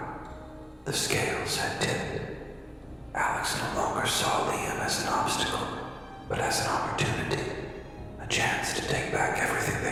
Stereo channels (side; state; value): both; identical; correlation 1.00